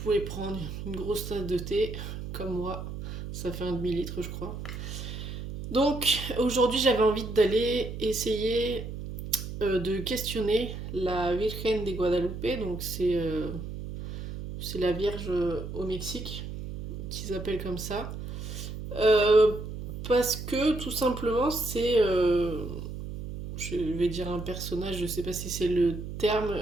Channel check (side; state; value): right; noise; hum, 8 dB below the sound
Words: prendre une grosse tasse de thé, comme moi. Ça fait un demi-litre, je crois. Donc, aujourd'hui, j'avais envie d'aller essayer de questionner la Virgen de Guadalupe. Donc, c'est la Vierge au Mexique, qu'ils appellent comme ça. Euh, Parce que, tout simplement, je vais dire un personnage, je sais pas si c'est le terme